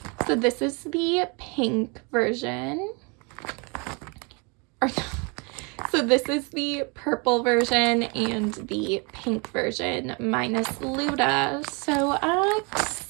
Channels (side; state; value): left; quieter; 31.6 dB